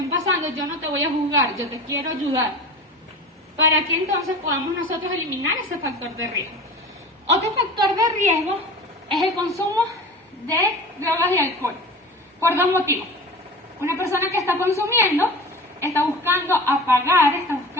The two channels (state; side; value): normal; both; correlation 0.35